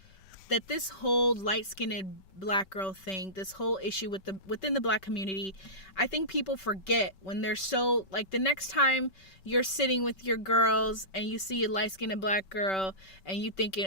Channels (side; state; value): right; late; 5.2 ms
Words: this whole light-skinned black girl thing, this whole issue within the black community, I think people forget when they're so, like, the next time you're sitting with your girls and you see a light-skinned black girl and you